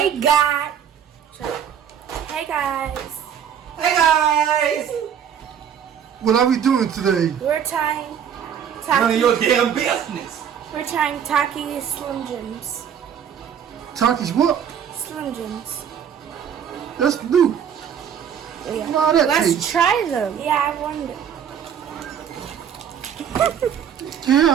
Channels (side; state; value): left; quieter; 8.4 dB